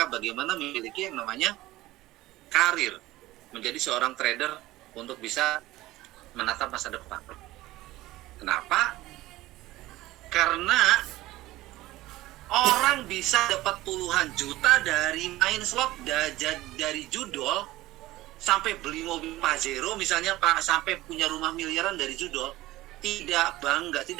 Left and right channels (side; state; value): left; quieter; 17.4 dB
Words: bagaimana memiliki yang namanya karir, menjadi seorang trader untuk bisa menatap masa depan. Kenapa? Karena orang bisa dapat puluhan juta dari main slot, dari judol, sampai beli mobil Pajero misalnya, Pak, sampai punya rumah miliaran dari judul, tidak